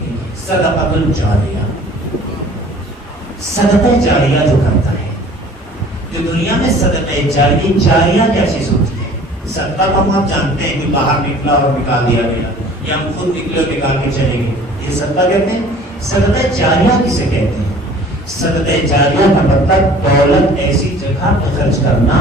گئی ہے، صدقۃ الجاریہ، صدقہ جاریہ جو کرتا ہے۔ جو دنیا میں صدقہ جاریہ کیا چیز ہوتی ہے؟ صدقہ کو آپ جانتے ہیں کہ باہر نکلا اور نکال دیا گیا، یا ہم خود نکلے اور نکال کے چلے گئے، یہ صدقہ کہتے ہیں۔ صدقہ جاریہ کسے کہتے ہیں؟ صدقہ جاریہ کا مطلب دولت ایسی جگہ پہ خرچ کرنا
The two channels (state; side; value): normal; both; correlation 0.49